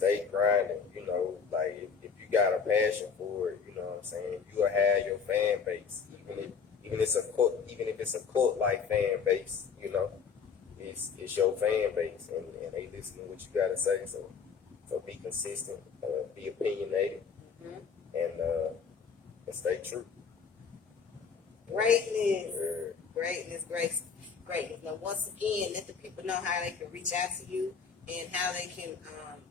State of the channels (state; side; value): quieter; right; 6.0 dB